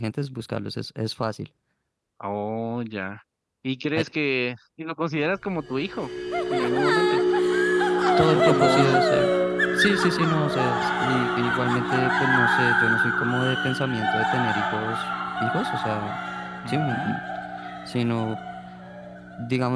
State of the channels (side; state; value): both; identical; correlation 1.00